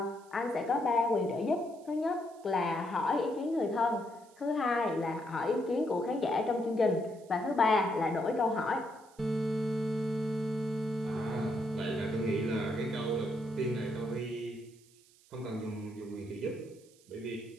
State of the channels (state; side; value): noise; right; hiss, 28 dB below the sound